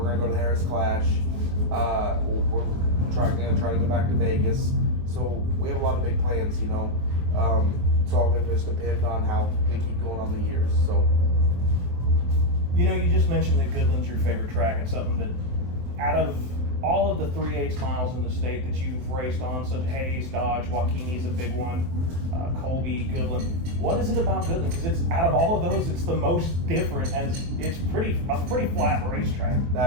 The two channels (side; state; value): left; late; 23 ms